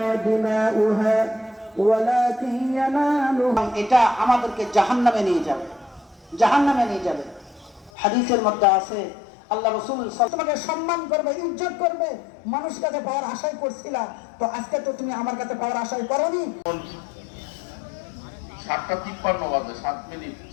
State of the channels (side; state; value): right; drops out; at 7.9 s